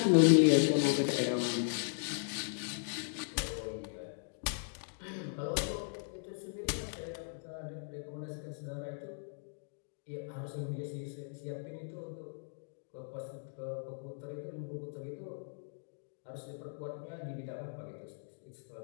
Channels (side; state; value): right; silent; digital silence